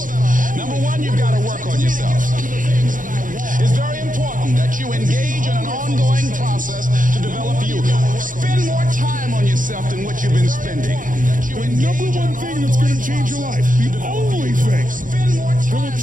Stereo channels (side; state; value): left; late; 0.39 ms